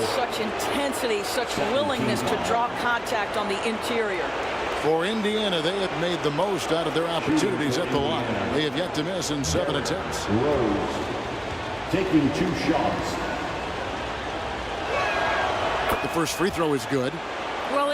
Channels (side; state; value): both; identical; correlation 1.00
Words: such intensity, such willingness to draw contact on the interior. For Indiana, they have made the most out of their opportunities at the line. They have yet to miss in 7 attempts. Rose taking 2 shots. The first free throw is good. Well,